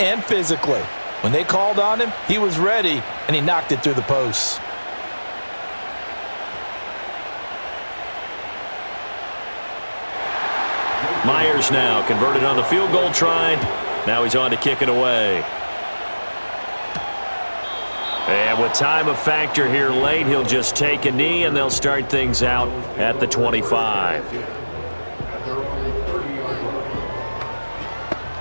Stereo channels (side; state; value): both; inverted; correlation -1.00